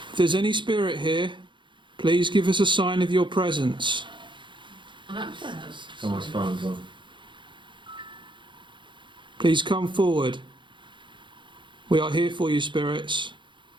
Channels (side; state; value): left; late; 0.23 ms